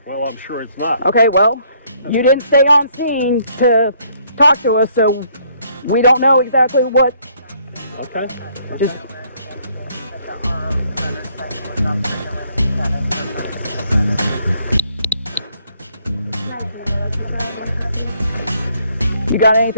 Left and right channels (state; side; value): inverted; both; correlation -0.66